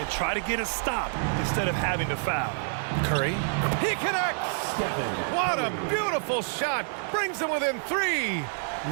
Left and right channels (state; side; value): silent; left; 60 dB below the other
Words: try to get a stop instead of having to foul. Curry. He connects! What a beautiful shot! Brings them within 3.